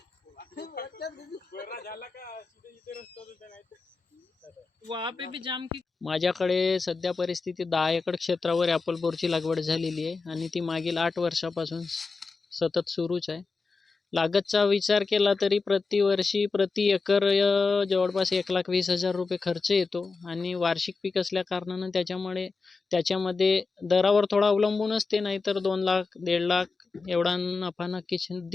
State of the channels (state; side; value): quieter; right; 4.3 dB